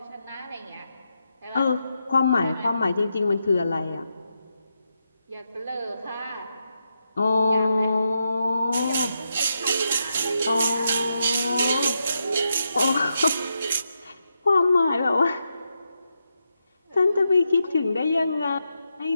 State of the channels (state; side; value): inverted; both; correlation -0.85